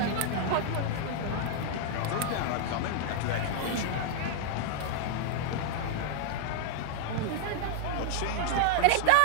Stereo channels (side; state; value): both; different; correlation 0.00